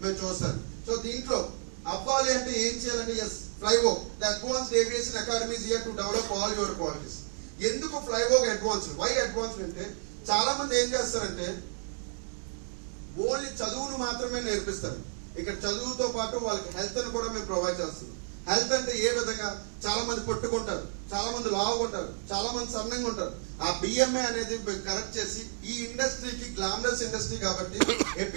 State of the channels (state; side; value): silent; left; 57 dB below the other